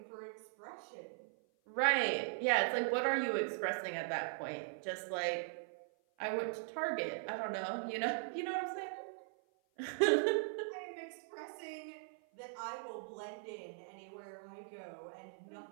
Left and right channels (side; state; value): left; silent; 51 dB below the other